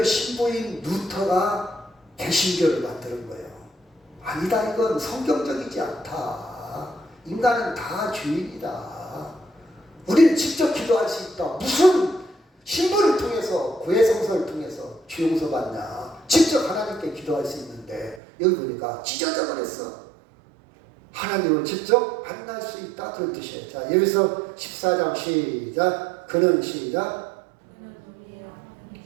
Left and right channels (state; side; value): drops out; left; at 18.2 s